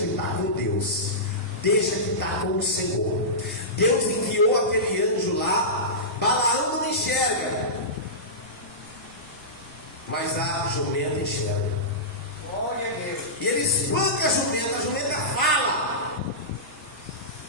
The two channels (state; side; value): noise; right; rumble, 25 dB below the sound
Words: está com Deus. Deixa que está com o Senhor. Deus enviou aquele anjo lá. Balaão não enxerga, mas a jumenta enxerga. Glória a Deus. E ele espanca a jumenta fala: